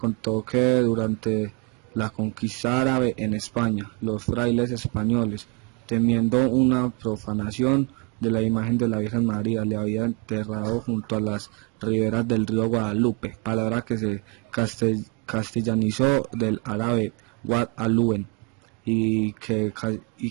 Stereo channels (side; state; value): left; quieter; 31.4 dB